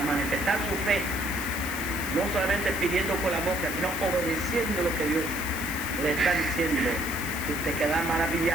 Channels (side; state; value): left; noise; hiss, 8 dB below the sound